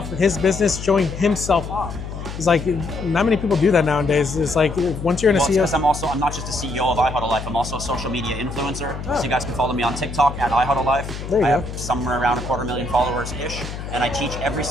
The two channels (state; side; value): noise; left; hum, 9 dB below the sound